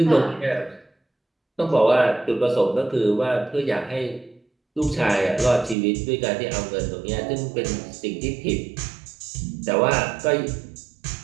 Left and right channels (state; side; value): drops out; left; at 5.8 s